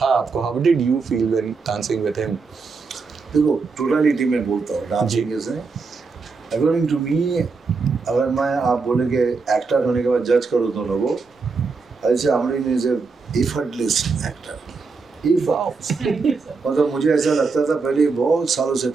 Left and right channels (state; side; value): quieter; left; 4.5 dB